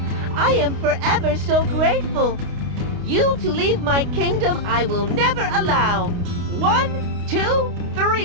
I am forever so grateful. You to leave my kingdom I will never allow. 1, 2,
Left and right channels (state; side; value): late; left; 29 ms